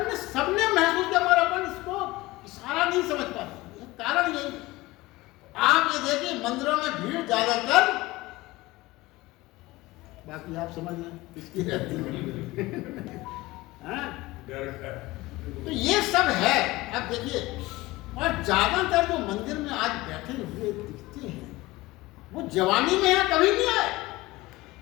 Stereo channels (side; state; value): right; quieter; 19.9 dB